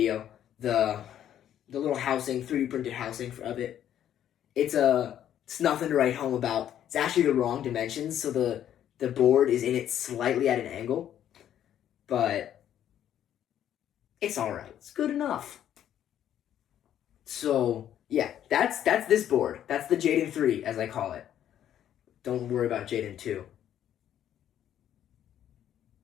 the little housing, 3D printed housing of it. It's nothing to write home about. It's actually the wrong dimensions, so the board is in it slightly at an angle. But it's alright. It's good enough. So, yeah, that's this board. That's the Jaden 3, as I call it. Don't worry about Jaden 2.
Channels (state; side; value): quieter; right; 10.7 dB